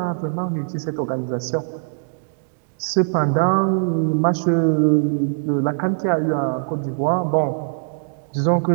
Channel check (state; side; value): silent; left; digital silence